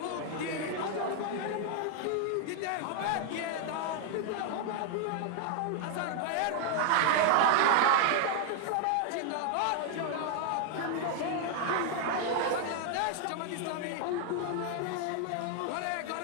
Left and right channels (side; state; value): both; different; correlation 0.00